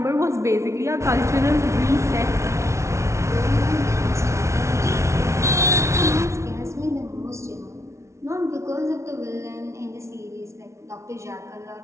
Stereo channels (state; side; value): late; left; 0.13 ms